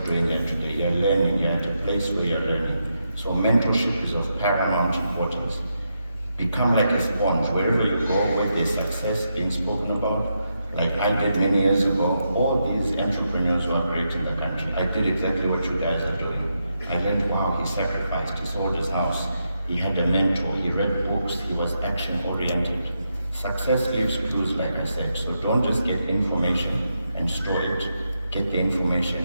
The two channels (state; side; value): inverted; both; correlation -0.83